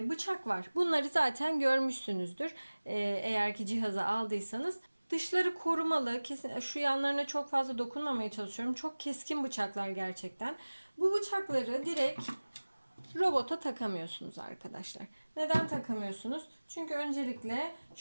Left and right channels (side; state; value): both; inverted; correlation -1.00